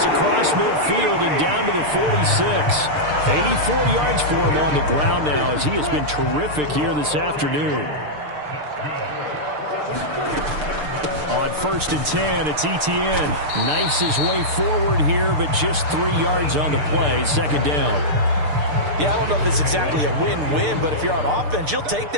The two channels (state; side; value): late; left; 6.7 ms